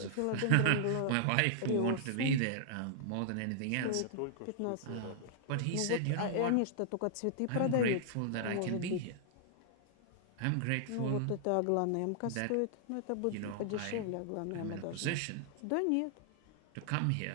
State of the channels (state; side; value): different; both; correlation -0.01